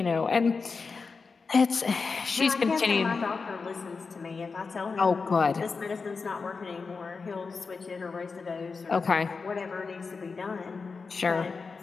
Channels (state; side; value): quieter; right; 4.7 dB